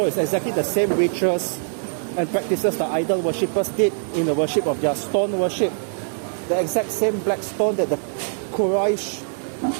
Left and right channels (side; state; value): left; silent; digital silence